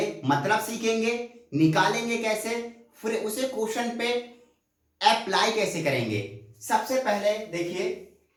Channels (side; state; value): both; identical; correlation 1.00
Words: मतलब सीखेंगे, निकालेंगे कैसे, फिर उसे क्वेश्चन पे अप्लाई कैसे करेंगे। सबसे पहले देखिए